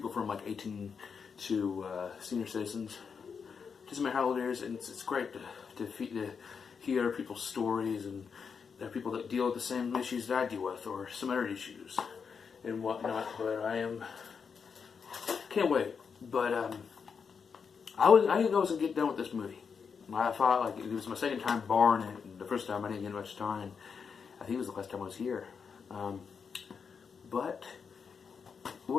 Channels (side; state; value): right; quieter; 6.1 dB